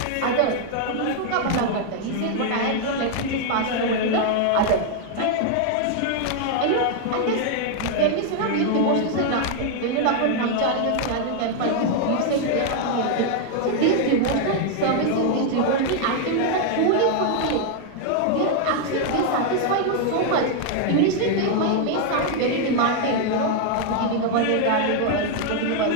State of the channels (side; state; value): both; different; correlation 0.00